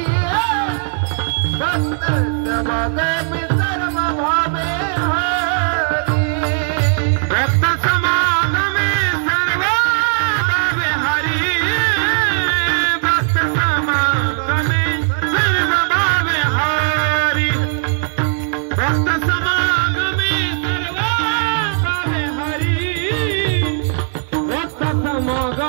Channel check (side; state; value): left; silent; 68 dB below the other